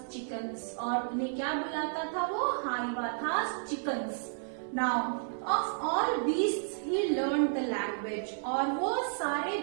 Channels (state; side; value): silent; left; digital silence